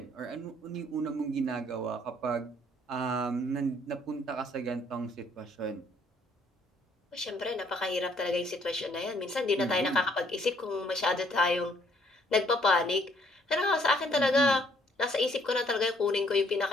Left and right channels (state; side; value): normal; both; correlation 0.65